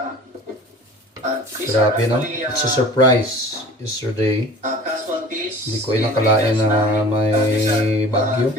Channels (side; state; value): both; normal; correlation 0.43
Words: Grabe no? It's a surprise yesterday. Hindi ko inakalain na may bagyo.